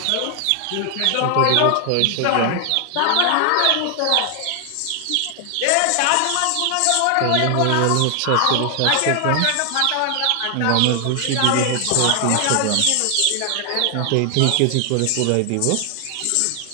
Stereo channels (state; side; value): different; both; correlation 0.00